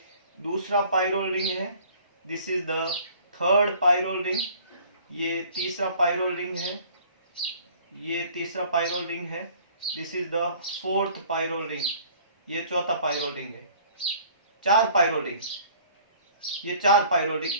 दूसरा पायरोल रिंग है। This is the third pyrrole ring, ये तीसरा पायरोल रिंग है, ये तीसरा पायरोल रिंग है। This is the fourth pyrrole ring, ये चौथा पायरोल रिंग है। 4 पायरोल रिंग, ये 4 पायरोल रिंग,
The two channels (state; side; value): inverted; both; correlation -0.53